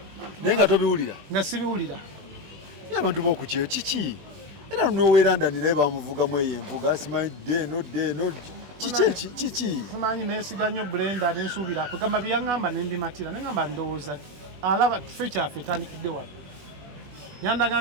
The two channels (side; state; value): left; late; 21 ms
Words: naye nga tobiwulira nga sibiwulira ye abantu b'okukyeyo kiki era noweerandani naye bamuvugamu eyo envuga simanyi deno kiki simanyi neesiga nnyo Brenda nensuubira kugamba byeyaŋŋamba nembimatira neŋŋamba ndowooza alaba tufe kyaffe etandikidde wano yandaga